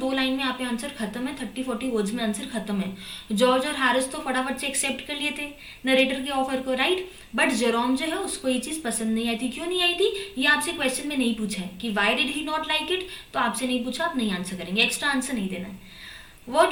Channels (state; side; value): identical; both; correlation 1.00